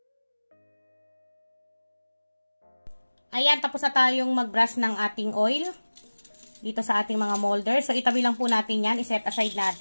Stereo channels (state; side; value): inverted; both; correlation -1.00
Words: Ayan, tapos na tayong mag-brush ng ating oil dito sa ating mga molder. So, itabi lang po natin yan. I-set aside